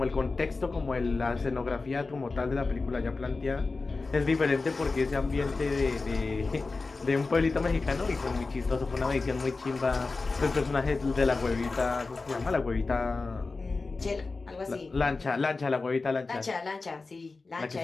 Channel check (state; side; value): quieter; right; 3.8 dB